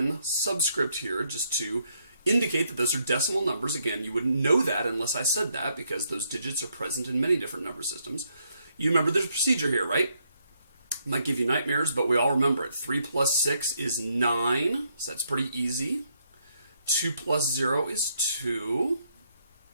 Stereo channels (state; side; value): inverted; both; correlation -0.74